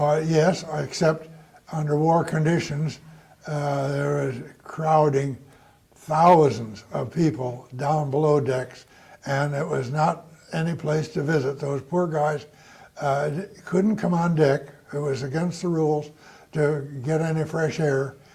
yes, except under war conditions, there was crowding thousands of people down below decks, and it was not any place to visit. Those poor guys couldn't come on deck. It was against the rules to get any fresh air,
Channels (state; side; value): identical; both; correlation 1.00